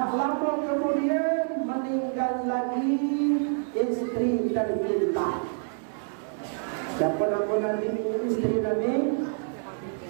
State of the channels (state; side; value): silent; left; digital silence